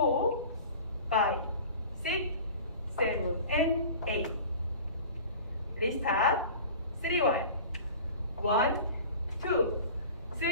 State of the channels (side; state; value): both; inverted; correlation -0.39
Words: 5, 6, 7 and 8 리스타트 3, 1 1, 2,